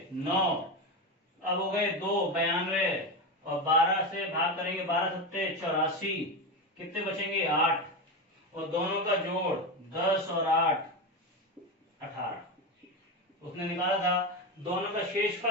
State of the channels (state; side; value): normal; both; correlation 0.17